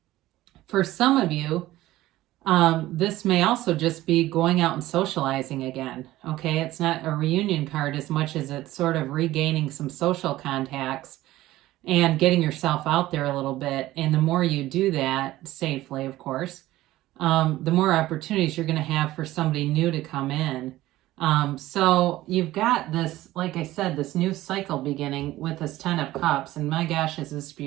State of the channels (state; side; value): quieter; left; 16.1 dB